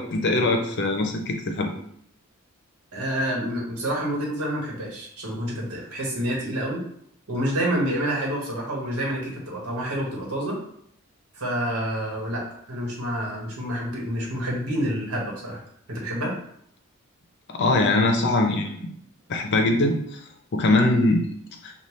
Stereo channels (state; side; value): normal; both; correlation 0.43